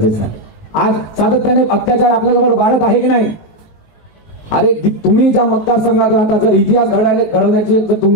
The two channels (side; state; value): right; late; 19 ms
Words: आहे. आज सातत्याने अत्याचार आपल्याजवळ वाढत आहे की नाही? अरे तुम्ही ज्या मतदारसंघात राहता, जर इतिहास घडवण्याची जर